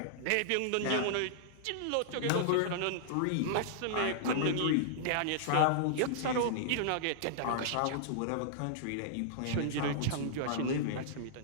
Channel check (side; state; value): both; different; correlation -0.01